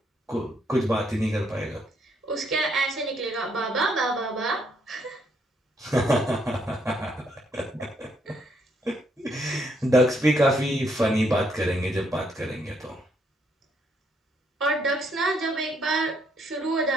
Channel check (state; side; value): normal; both; correlation 0.72